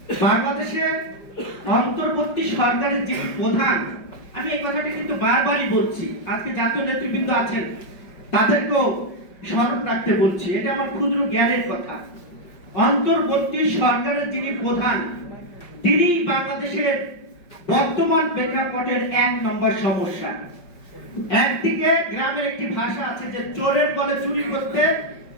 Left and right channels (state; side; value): late; right; 5.2 ms